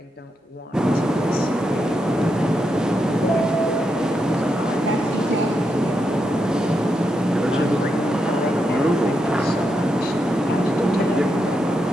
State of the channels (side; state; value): both; normal; correlation 0.83